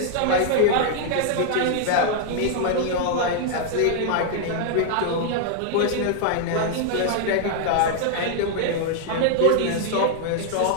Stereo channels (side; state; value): both; different; correlation 0.00